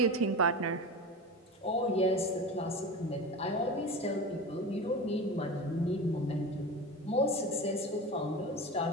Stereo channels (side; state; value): both; normal; correlation 0.28